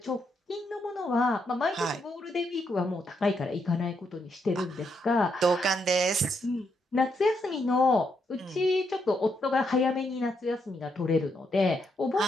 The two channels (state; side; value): normal; both; correlation 0.78